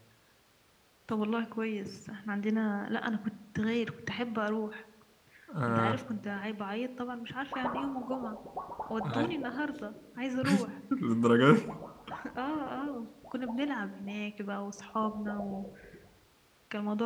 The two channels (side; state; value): both; identical; correlation 1.00